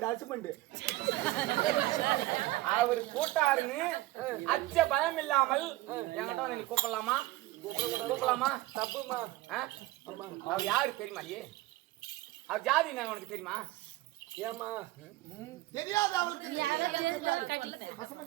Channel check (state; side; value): quieter; left; 18.0 dB